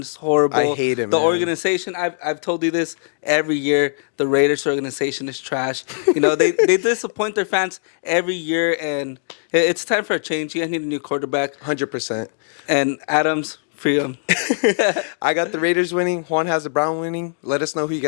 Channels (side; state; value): right; silent; digital silence